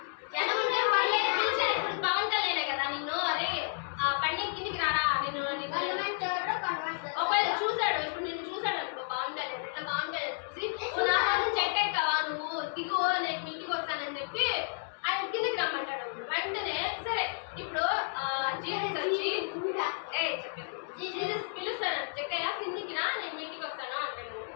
వెంటనే సరే ఇప్పుడు జీసస్ వచ్చి జీసస్ పిలుస్తాను జక్కయ్య కిందికి రా నేను మీ ఇంటికి వస్తాను అంటాడు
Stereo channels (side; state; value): right; silent; digital silence